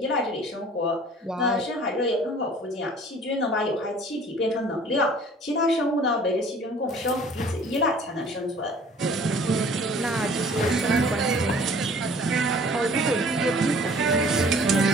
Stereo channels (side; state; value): both; normal; correlation 0.51